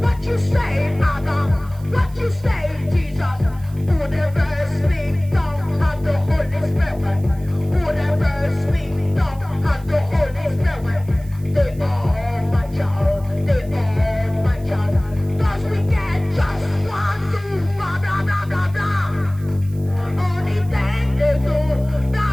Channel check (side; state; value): right; noise; hiss, 25 dB below the sound